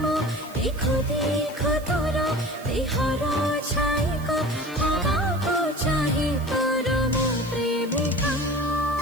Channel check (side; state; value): right; noise; hiss, 20 dB below the sound